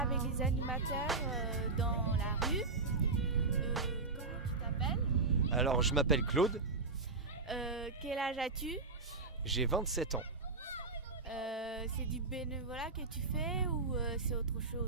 les animateurs dans la rue. Comment tu t'appelles ? Alors, je m'appelle Claude, Quel âge as-tu ? j'ai 27 ans. C'est du bénévolat que tu fais ou c'est autre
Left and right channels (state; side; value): quieter; left; 3.9 dB